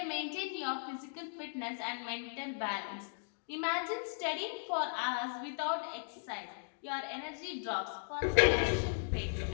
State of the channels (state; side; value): silent; right; digital silence